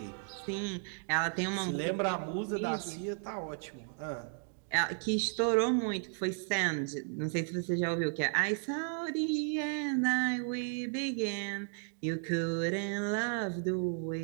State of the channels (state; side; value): silent; left; 55 dB below the other